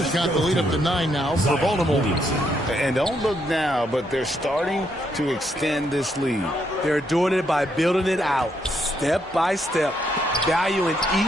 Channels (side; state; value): both; normal; correlation 0.76